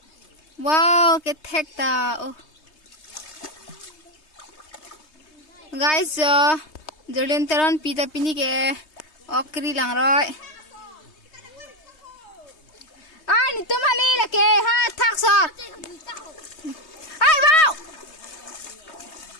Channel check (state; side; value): late; right; 3.2 ms